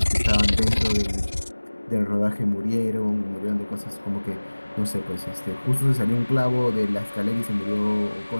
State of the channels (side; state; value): both; inverted; correlation -1.00